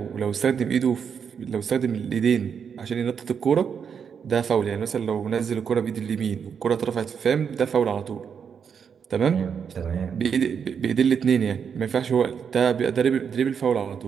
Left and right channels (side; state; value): left; quieter; 7.0 dB